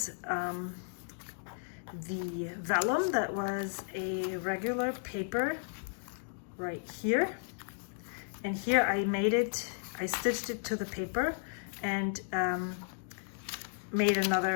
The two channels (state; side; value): silent; right; digital silence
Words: the vellum that was a regular paper right here. And here I stitched it to the paper and made